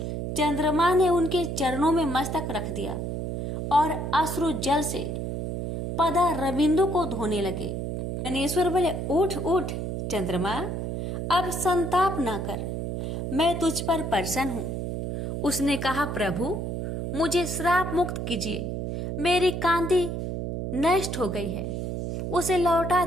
चंद्रमा ने उनके चरणों में मस्तक रख दिया और अश्रु जल से पदा रविंदु को धोने लगे। गणेश्वर बोले, उठ उठ चंद्रमा, अब संताप न कर, मैं तुझ पर प्रसन्न हूँ। उसने कहा, प्रभु मुझे श्राप मुक्त कीजिए, मेरी कांति नष्ट हो गई है, उसे लौटा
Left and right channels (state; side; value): noise; right; hum, 4 dB below the sound